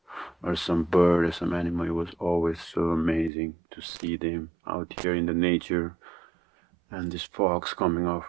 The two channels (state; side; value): drops out; left; at 3.3 s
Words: some bird or some animal, it was always so amazing to see them out here in the nature, and these fogs coming out